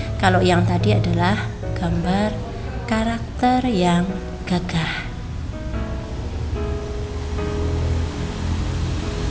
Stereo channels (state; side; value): identical; both; correlation 1.00